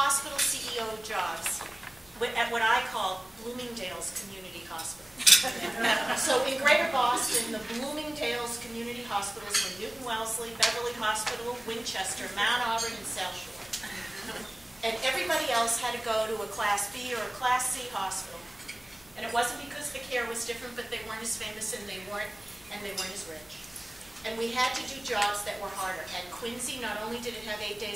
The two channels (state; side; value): noise; left; hum, 27 dB below the sound